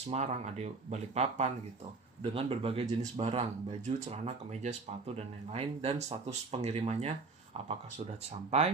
ada Balikpapan gitu. Dengan berbagai jenis barang, baju, celana, kemeja, sepatu, dan lain-lain. Dan status pengirimannya, apakah sudah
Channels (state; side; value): quieter; left; 4.0 dB